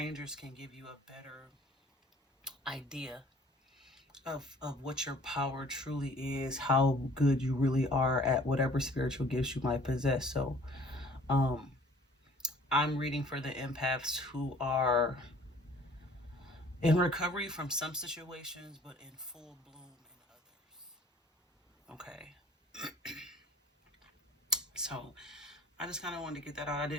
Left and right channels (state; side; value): normal; both; correlation 0.52